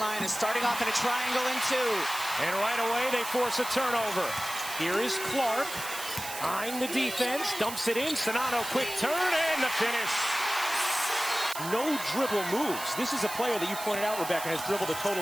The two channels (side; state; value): right; noise; hiss, 9 dB below the sound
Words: starting off in a triangle in two. And right away, they force a turnover. Here is Clark, eyeing the defense, dumps it in. Sonano, quick turn, and the finish. No dribble moves. This is a player that you pointed out, Rebecca, has dribbled a